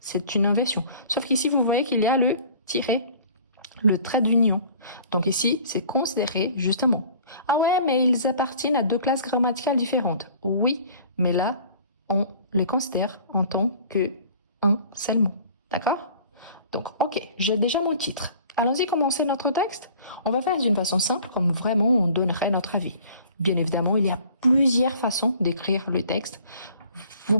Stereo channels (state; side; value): inverted; both; correlation -0.49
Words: une inversion. Sauf qu'ici, vous voyez qu'il y a le tiret, le trait d'union. Donc ici, c'est considéré justement. Ah ouais, mais ils appartiennent à 2 classes grammaticales différentes. Oui, mais là, on les considère en tant qu'un seul mot. D'accord? Donc, ok, j'ai déjà mon titre. Allons-y commencer notre texte. On va faire d'une façon simple, comme vraiment on donnerait notre avis. Bien évidemment, il y a plusieurs façons d'écrire le texte. Vous